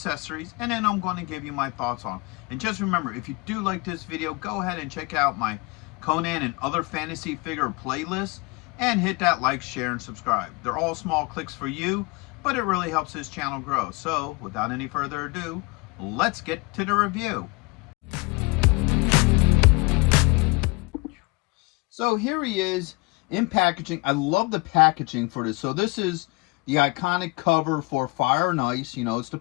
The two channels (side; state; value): right; quieter; 27.0 dB